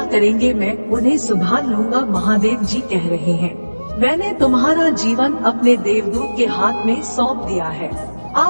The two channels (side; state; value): both; inverted; correlation -1.00